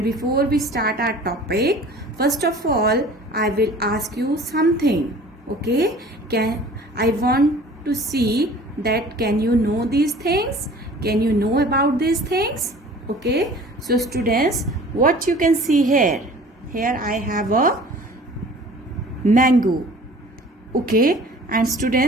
before we start our topic, first of all I will ask you something. Okay, I want to see that can you know these things, can you know about these things? Okay, so students, what you can see here I have a mango. Okay, and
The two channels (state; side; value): normal; both; correlation 0.47